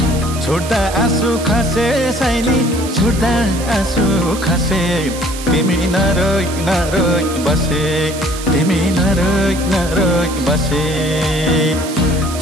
छोड्दा आँसु खसे साइली छोड्दा आँसु खसे तिमी नरोइ नरोइ बसे तिमी नरोइ नरोइ बसे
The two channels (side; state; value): right; noise; hiss, 11 dB below the sound